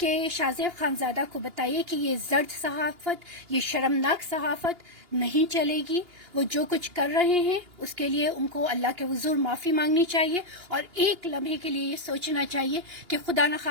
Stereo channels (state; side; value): late; left; 2.8 ms